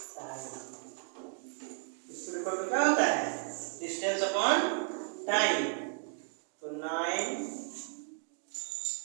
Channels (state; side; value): silent; left; 55 dB below the other